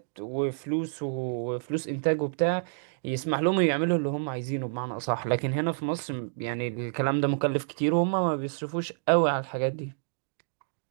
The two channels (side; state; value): left; silent; digital silence